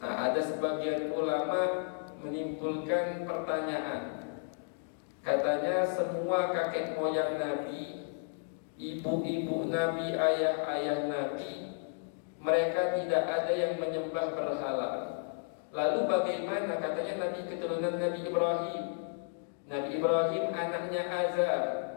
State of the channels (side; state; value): right; silent; digital silence